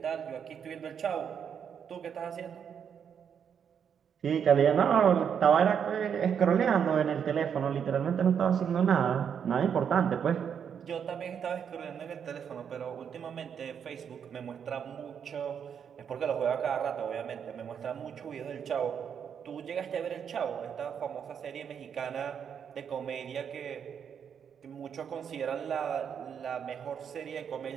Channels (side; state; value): left; quieter; 7.7 dB